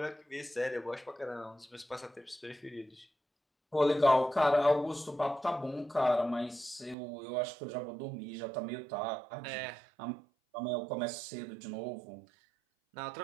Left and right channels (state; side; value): drops out; left; at 7.0 s